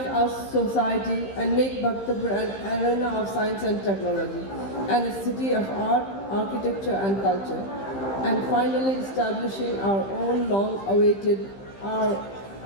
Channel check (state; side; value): late; right; 15 ms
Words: our society and make Bhaktapur an arena of science and technology and a city of art, architecture and culture. And finally establishing our own long-awaited our